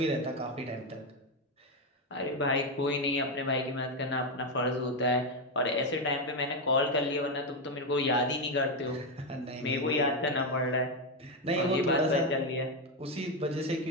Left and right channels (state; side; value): normal; both; correlation 0.08